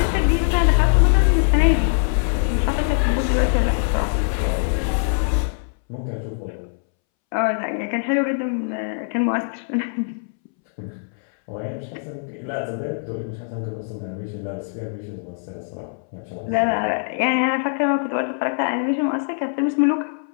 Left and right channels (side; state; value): right; silent; 64 dB below the other